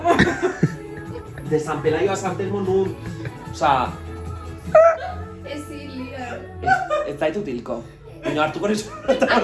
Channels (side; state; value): both; identical; correlation 1.00